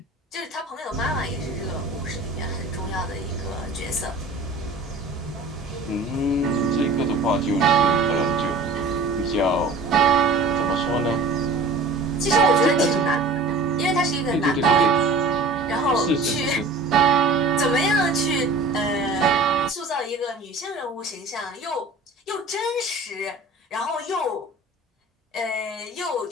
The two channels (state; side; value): quieter; left; 3.1 dB